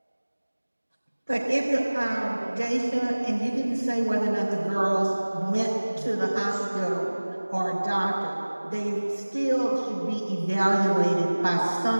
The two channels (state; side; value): inverted; both; correlation -1.00